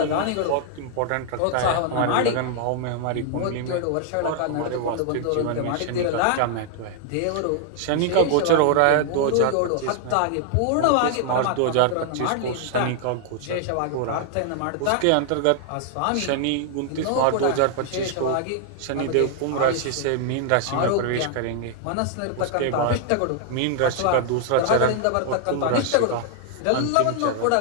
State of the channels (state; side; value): different; both; correlation 0.00